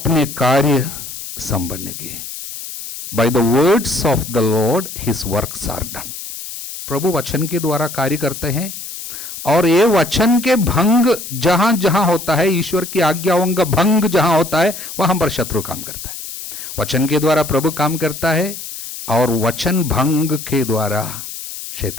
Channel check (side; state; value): left; noise; hiss, 10 dB below the sound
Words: कार्य संपन्न किए। By the words of the Lord his works are done. प्रभु वचन के द्वारा कार्य करते हैं, और ये वचन के भंग जहां जहां होता है, ईश्वर की आज्ञाओं का भंग जहां होता है, वहां पर शत्रु काम करता है। वचन के द्वारा प्रभु काम करता है, और वचन भंग के द्वारा